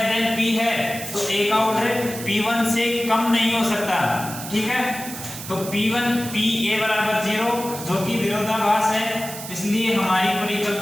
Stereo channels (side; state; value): right; noise; hiss, 10 dB below the sound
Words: देन p है, तो a का ऑर्डर p1 से कम नहीं हो सकता, ठीक है। तो P1 PA बराबर 0 जो कि विरोधाभास है, इसलिए हमारी